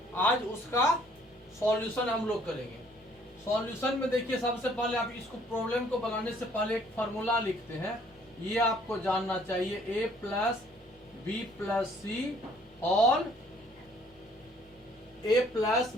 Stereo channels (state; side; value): normal; both; correlation 0.61